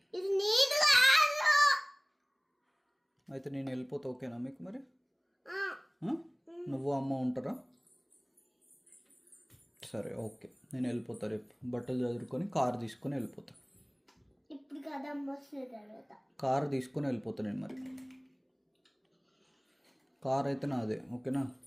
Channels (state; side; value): identical; both; correlation 1.00